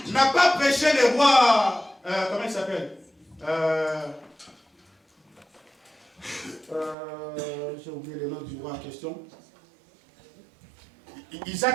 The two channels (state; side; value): drops out; left; at 7.0 s